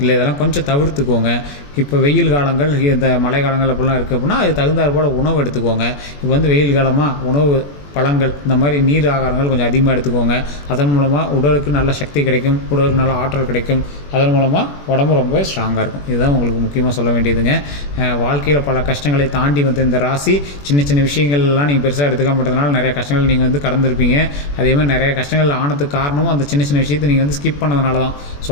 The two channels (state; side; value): late; right; 21 ms